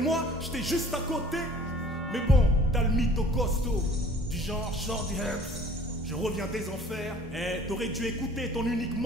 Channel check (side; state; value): both; normal; correlation 0.51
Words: j'étais juste à côté. Mais bon, t'as le mytho costaud, du genre Shorty Herbs. Je reviens des enfers, t'aurais dû écouter ton unique